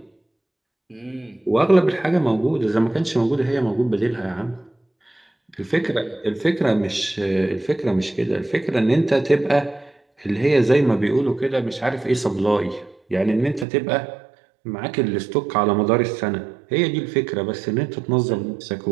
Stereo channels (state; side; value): drops out; left; at 13.7 s